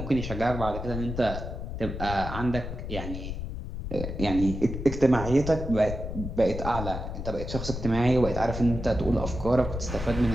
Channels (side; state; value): left; noise; rumble, 6 dB below the sound